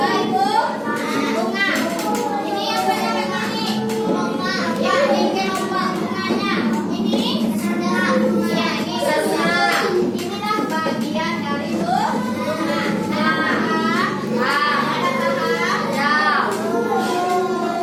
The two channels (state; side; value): identical; both; correlation 1.00